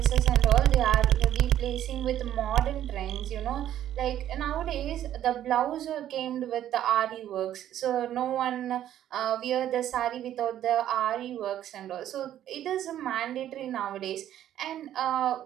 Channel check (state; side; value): quieter; left; 11.6 dB